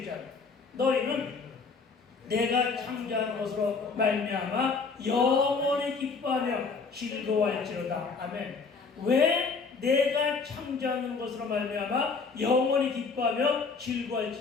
너희는 내가 창조한 것으로 말미암아 영원히 기뻐하며 즐거워할지로다. 아멘. 왜 내가 창조하는 것으로 말미암아 영원히 기뻐하며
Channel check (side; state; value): right; quieter; 4.7 dB